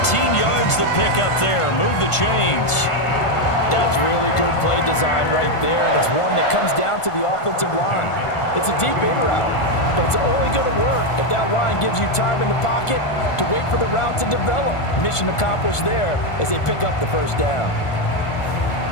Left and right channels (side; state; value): right; late; 1.5 ms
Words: yards the pickup there. Move the chains. That's really good play design right there, and it's one that comes down to the offensive line. It's a deep in route, but it's only going to work if that line gives you time in the pocket to wait for the route to develop. Mission accomplished there as they pick up the first down.